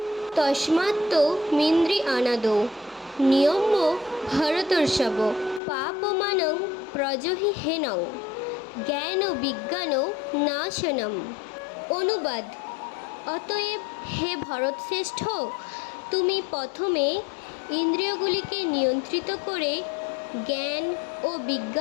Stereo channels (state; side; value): drops out; right; at 5.6 s